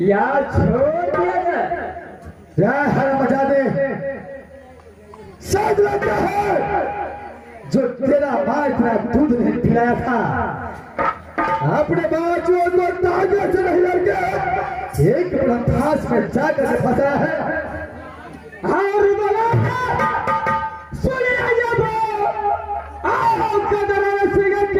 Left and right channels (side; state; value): both; identical; correlation 1.00